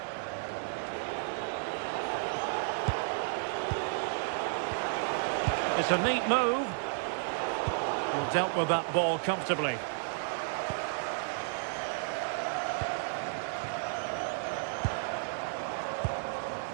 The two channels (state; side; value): silent; left; digital silence